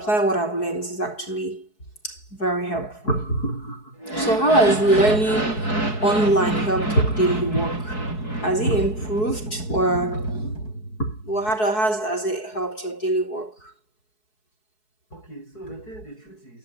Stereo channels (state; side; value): late; right; 4.7 ms